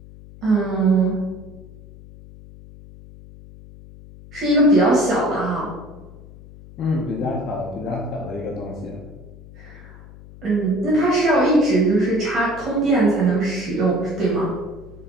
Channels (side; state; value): left; noise; hum, 19 dB below the sound